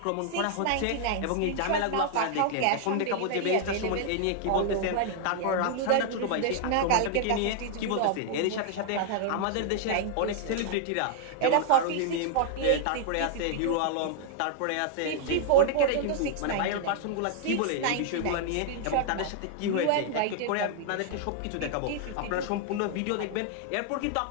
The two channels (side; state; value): both; different; correlation 0.00